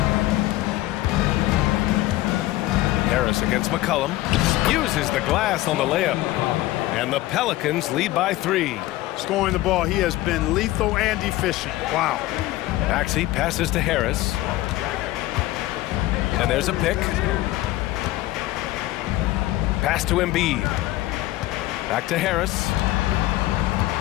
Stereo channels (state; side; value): quieter; right; 17.0 dB